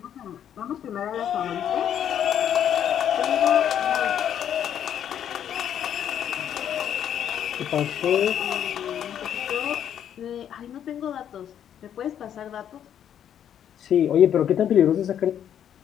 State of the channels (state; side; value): quieter; right; 9.6 dB